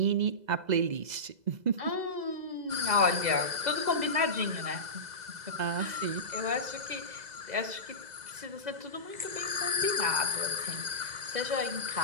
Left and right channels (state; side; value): late; left; 2.0 ms